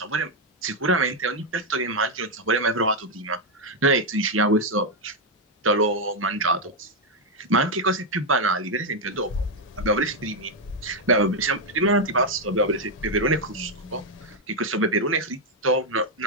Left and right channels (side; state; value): both; normal; correlation 0.02